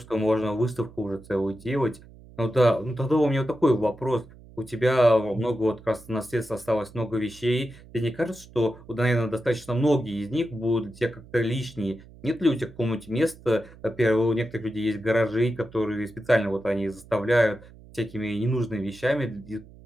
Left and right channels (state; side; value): noise; right; hum, 21 dB below the sound